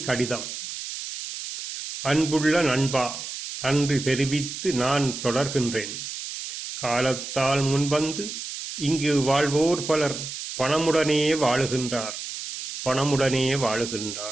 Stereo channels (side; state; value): right; noise; hiss, 8 dB below the sound